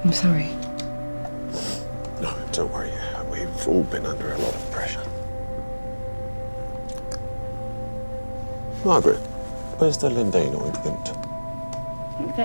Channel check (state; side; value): inverted; both; correlation -1.00